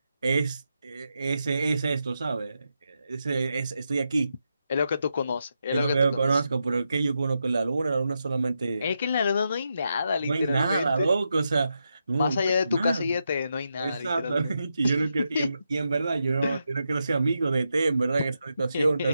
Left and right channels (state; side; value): inverted; both; correlation -0.85